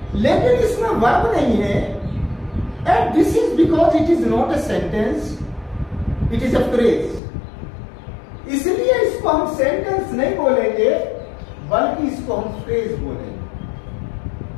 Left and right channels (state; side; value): drops out; right; at 7.2 s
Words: लेकिन इसमें वर्ब नहीं है। And this is because it is not a sentence, it is a phrase. इसलिए इसको हम सेंटेंस नहीं बोलेंगे, बल्कि इसको हम फ्रेज बोलेंगे।